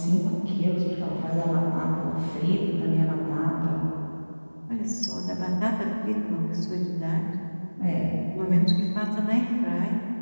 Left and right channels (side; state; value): both; inverted; correlation -1.00